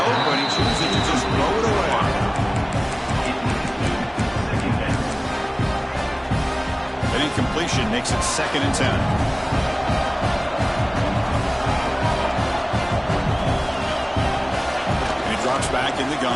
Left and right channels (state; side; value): identical; both; correlation 1.00